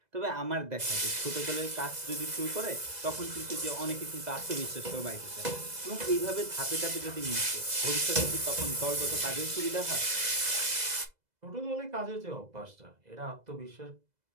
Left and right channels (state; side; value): late; left; 2.0 ms